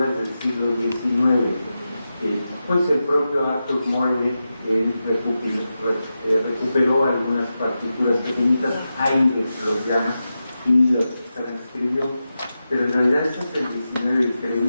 del siglo XIX, pues el propio Arthur Morley recuperó algunas partituras pequeñitas, Haydn los llama, y los transcribió, pero en realidad estas del XIX y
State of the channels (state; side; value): inverted; both; correlation -0.91